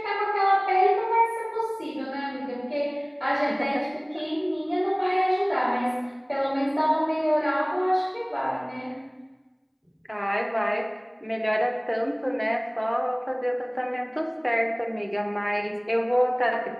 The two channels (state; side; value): identical; both; correlation 1.00